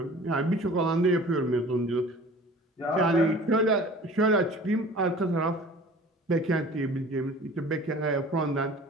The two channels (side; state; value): both; normal; correlation 0.44